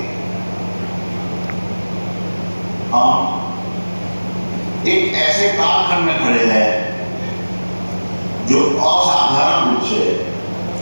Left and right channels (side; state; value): both; inverted; correlation -1.00